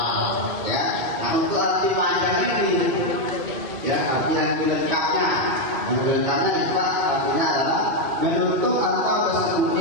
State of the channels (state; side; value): late; left; 2.4 ms